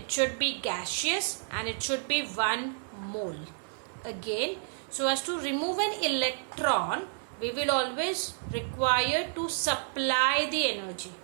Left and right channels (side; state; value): left; silent; digital silence